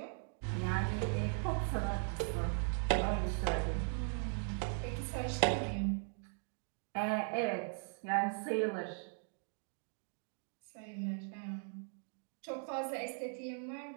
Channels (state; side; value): silent; left; 52 dB below the other